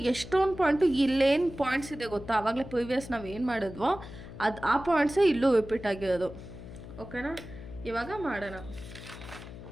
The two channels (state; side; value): noise; left; hum, 14 dB below the sound